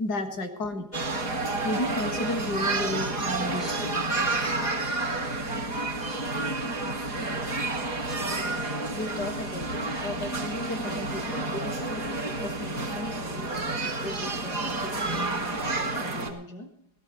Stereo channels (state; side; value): late; right; 4.8 ms